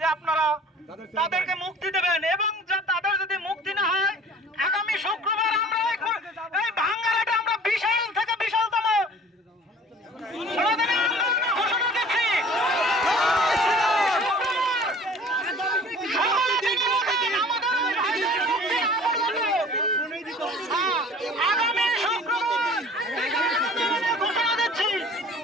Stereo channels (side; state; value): both; normal; correlation 0.47